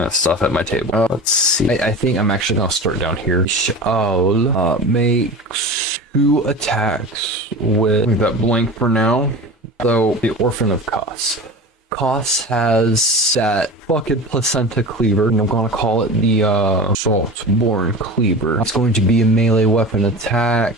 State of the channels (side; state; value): both; normal; correlation 0.33